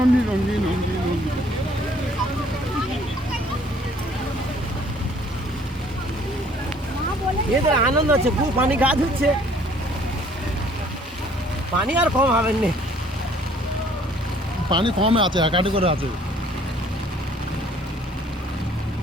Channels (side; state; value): both; normal; correlation 0.58